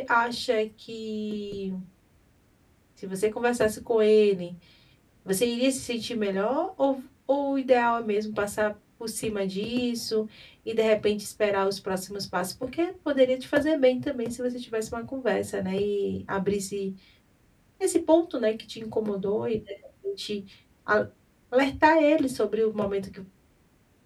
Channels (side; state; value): both; identical; correlation 1.00